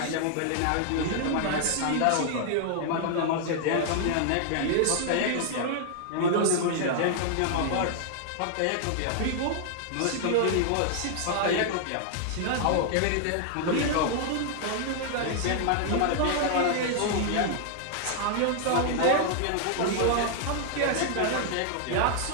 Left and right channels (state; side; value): different; both; correlation 0.00